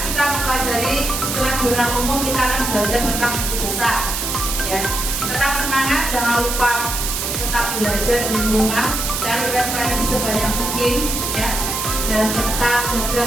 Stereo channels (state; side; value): noise; right; hiss, 2 dB below the sound